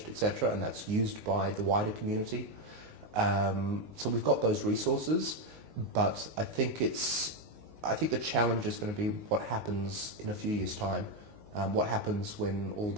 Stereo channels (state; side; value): late; left; 19 ms